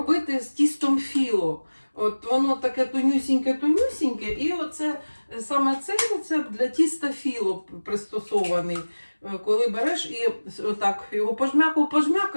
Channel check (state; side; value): inverted; both; correlation -1.00